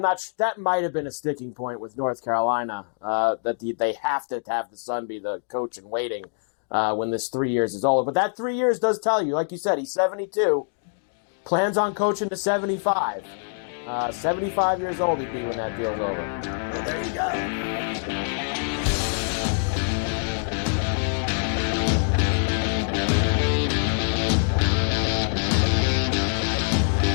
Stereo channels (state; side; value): silent; right; digital silence